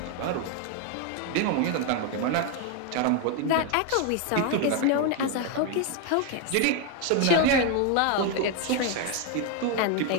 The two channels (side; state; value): both; different; correlation 0.01